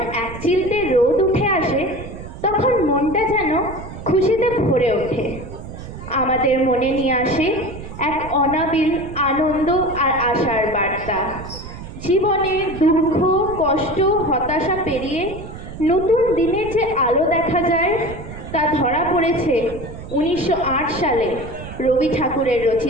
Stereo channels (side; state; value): right; noise; rumble, 12 dB below the sound